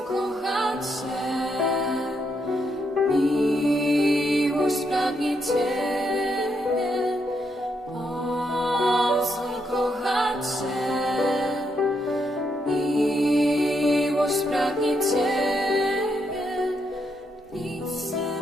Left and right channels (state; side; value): normal; both; correlation 0.79